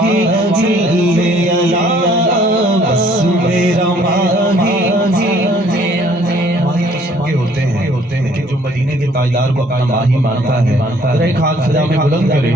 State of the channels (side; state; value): both; normal; correlation 0.60